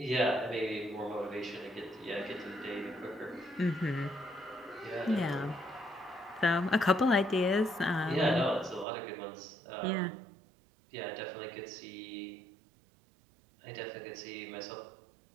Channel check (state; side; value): drops out; left; at 8.8 s